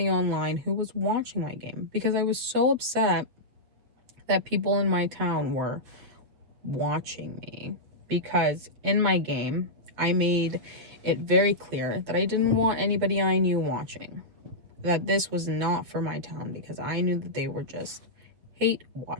online who was watching my game, because I was so upset that people in my town were watching me. Because in my game, I made it very clear that I didn't want anybody I knew watching, that this was not for my town, because I knew that they were just hate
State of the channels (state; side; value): late; left; 8.0 ms